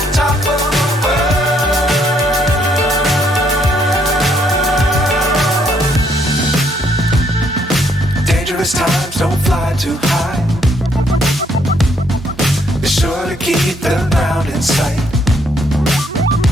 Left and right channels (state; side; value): normal; both; correlation 0.70